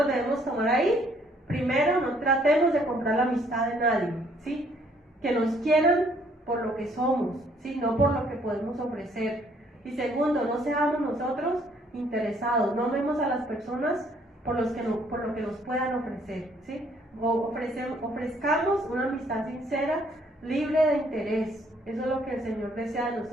debemos tomar ahí? Primero, no tratemos de comprar la amistad de nadie, ¿sí? Que nos quieran por lo que somos, ¿sí? No por lo que podemos ofrecer. Y segundo, no seamos nosotros interesados, no vemos a las personas por lo que nos puedan ofrecer, ¿sí? Ofrezcamos una amistad sincera, libre de interés. Eso es lo que el Señor desea de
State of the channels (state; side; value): normal; both; correlation 0.64